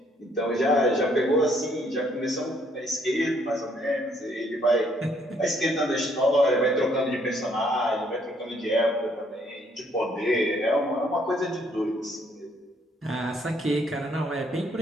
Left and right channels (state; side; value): normal; both; correlation 0.67